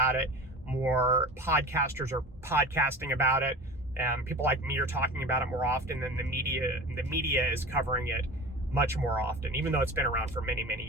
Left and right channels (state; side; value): normal; both; correlation 0.34